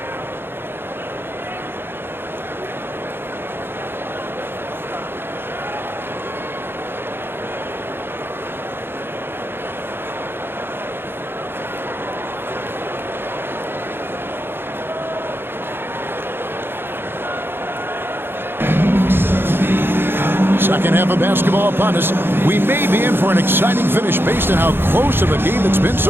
Second half of basketball upon us. We may be in for an exciting finish based on how close of a game it's been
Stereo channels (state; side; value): late; left; 0.10 ms